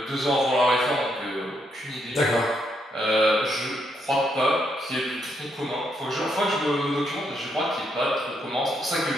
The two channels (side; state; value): both; normal; correlation 0.77